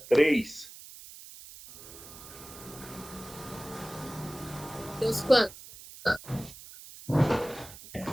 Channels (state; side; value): noise; right; hiss, 16 dB below the sound